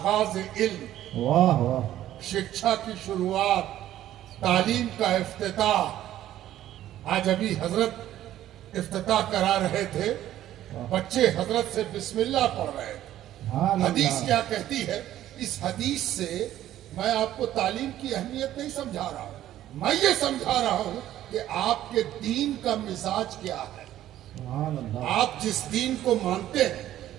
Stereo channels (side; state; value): left; quieter; 12.8 dB